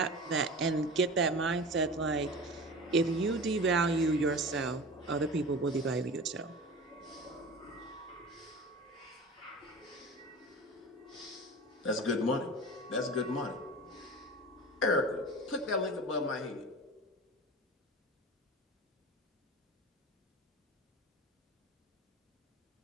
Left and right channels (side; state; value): both; normal; correlation 0.34